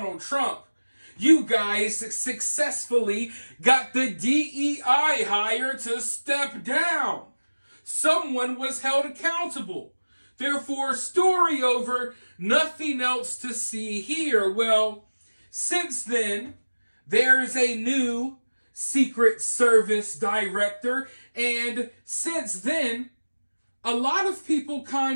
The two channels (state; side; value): inverted; both; correlation -1.00